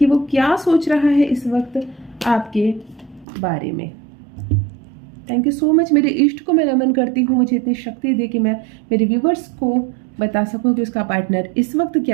वो क्या सोच रहा है इस वक्त आपके बारे में। थैंक यू सो मच, मेरे इष्ट को मैं नमन करती हूँ, मुझे इतनी शक्ति दे कि मैं मेरे व्यूवर्स को बता सकूँ कि उसका पार्टनर इस वक्त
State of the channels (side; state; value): left; drops out; at 3.2 s